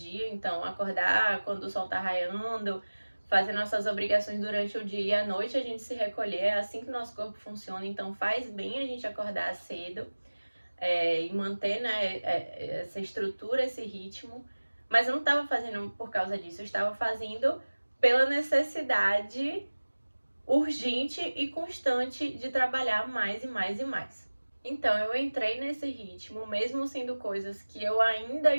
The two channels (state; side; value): inverted; both; correlation -1.00